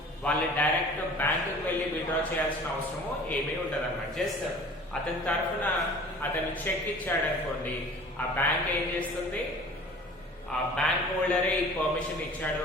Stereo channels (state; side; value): normal; both; correlation 0.45